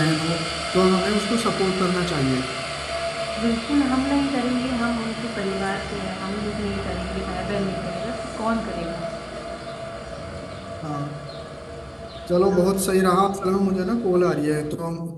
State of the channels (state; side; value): identical; both; correlation 1.00